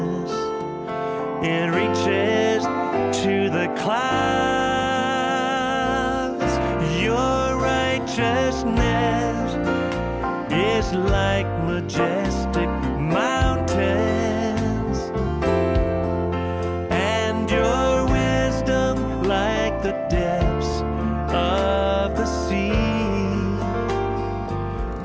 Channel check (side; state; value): both; identical; correlation 1.00